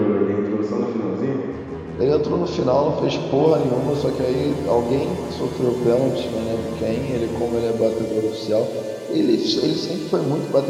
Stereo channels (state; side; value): identical; both; correlation 1.00